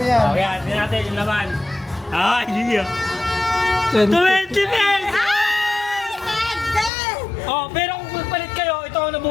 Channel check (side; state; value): right; drops out; at 6.9 s